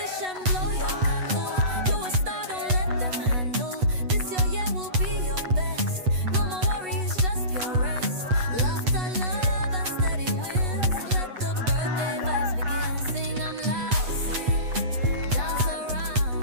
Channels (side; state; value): left; late; 8.1 ms